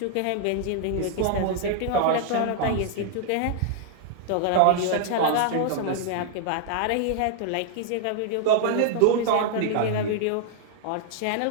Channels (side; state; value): both; different; correlation 0.00